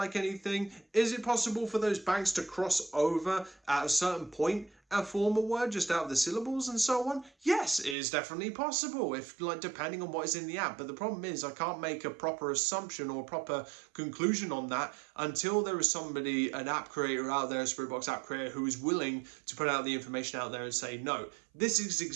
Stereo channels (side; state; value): left; drops out; at 8.0 s